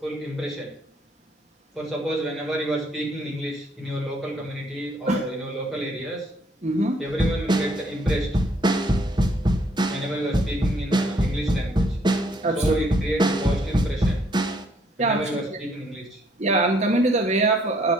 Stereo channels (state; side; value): normal; both; correlation 0.66